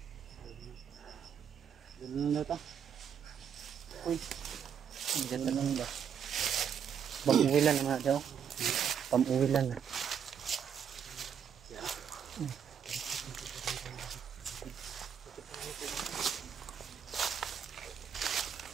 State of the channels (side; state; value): left; quieter; 7.9 dB